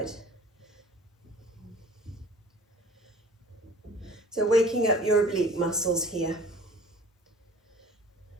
So waking up your oblique muscles here.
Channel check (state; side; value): normal; both; correlation 0.47